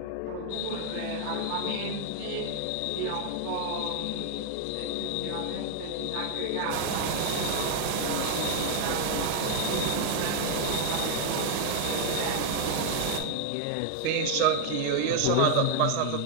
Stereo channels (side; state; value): both; different; correlation 0.00